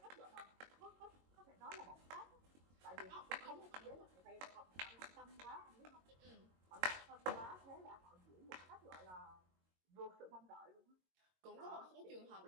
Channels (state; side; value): late; left; 22 ms